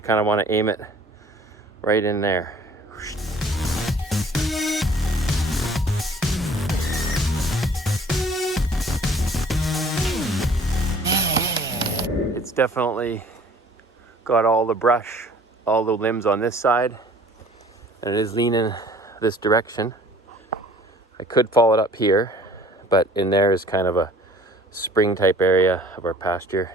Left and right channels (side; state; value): both; normal; correlation 0.52